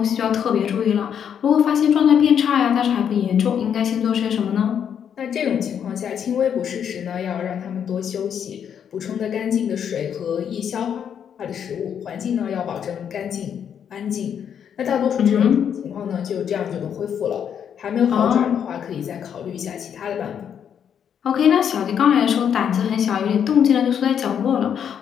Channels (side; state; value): right; quieter; 8.3 dB